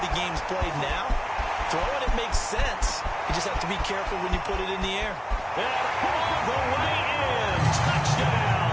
game's played now, throwing it makes sense. You just have to be careful when you put it in the air. And all the way in.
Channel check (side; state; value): both; identical; correlation 1.00